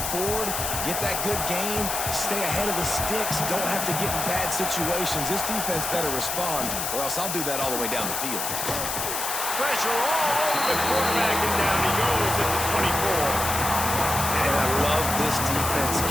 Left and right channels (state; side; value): noise; left; hiss, 2 dB below the sound